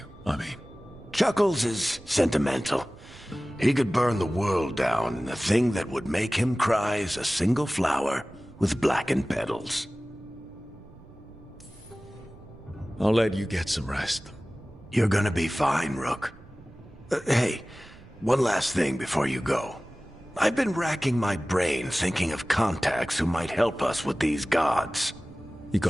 I mean. Chuckles is sentimental. He could burn the world down, and the thing that would make him cry is a single flower with blackened petals. I'll let you get some rest. You're gonna be fine, Rook. Hey, one last thing before you go. I've been racking my brain thinking of contacts who might help us with these gods. You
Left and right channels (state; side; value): noise; right; rumble, 21 dB below the sound